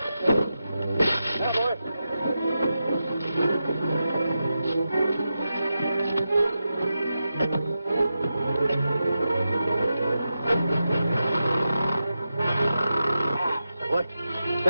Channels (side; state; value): both; inverted; correlation -0.90